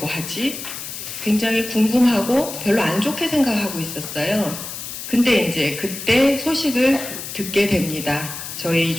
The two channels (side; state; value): left; noise; hiss, 9 dB below the sound